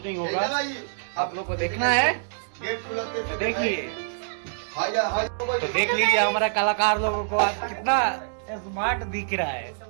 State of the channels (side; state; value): left; silent; digital silence